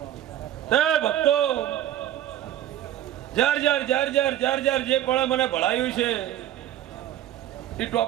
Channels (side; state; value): left; quieter; 12.2 dB